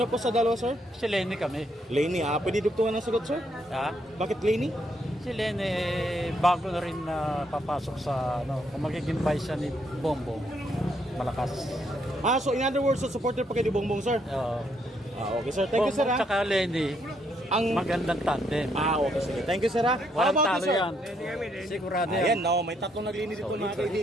po sa dalawa, sir? si Lenny kami. Laney. Pwede dugtungan ng sagot, sir? Ha? Bakit Laney? Si Lenny, bago na rin na papasok sa, ano, kung magiging vice siya ni Bongbong, malakas. So in other words, so supporter pa kayo ni Bongbong, sir? Okay, sir. Thank you, sir, Bongbong ha? tsaka Lenny, Ang... magandang tandem. Okay, sige. Thank you, sir, ha? How Walang about you, talo sir? yan. Sigurado Ayan, yan. no, may tatlong naglinis dito, mga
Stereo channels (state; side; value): normal; both; correlation 0.73